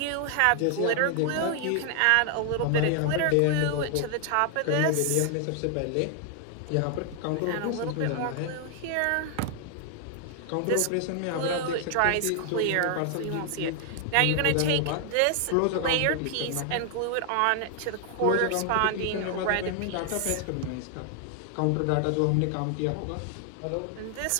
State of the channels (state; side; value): different; both; correlation 0.00